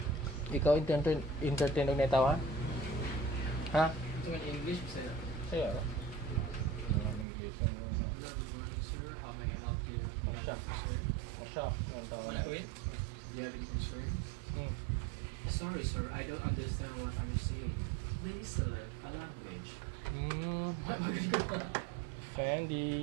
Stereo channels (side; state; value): left; drops out; at 7.2 s